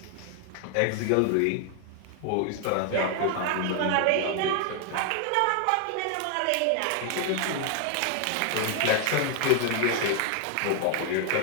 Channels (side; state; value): both; different; correlation 0.00